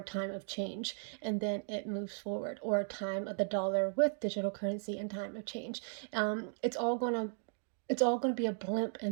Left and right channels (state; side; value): silent; left; digital silence